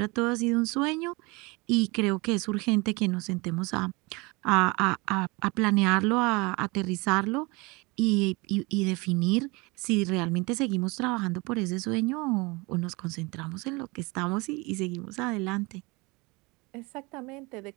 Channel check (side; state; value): left; quieter; 25.9 dB